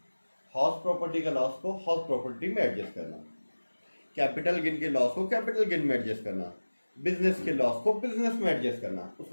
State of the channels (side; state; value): both; inverted; correlation -1.00